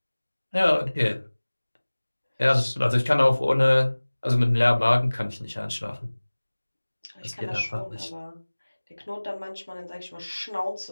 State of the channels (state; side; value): inverted; both; correlation -1.00